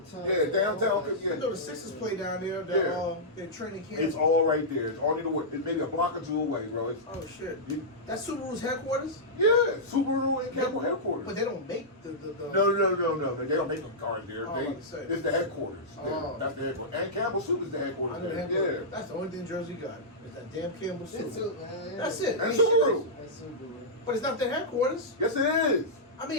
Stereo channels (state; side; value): normal; both; correlation -0.12